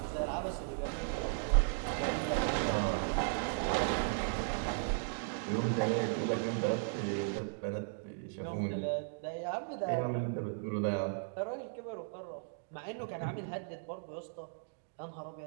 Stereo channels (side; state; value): left; silent; digital silence